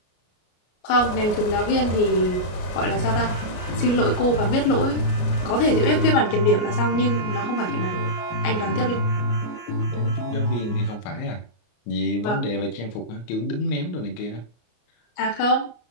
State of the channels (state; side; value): late; right; 33 ms